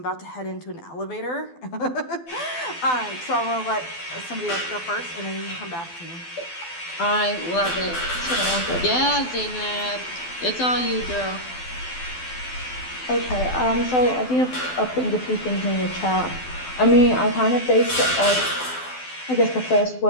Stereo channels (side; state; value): right; late; 12 ms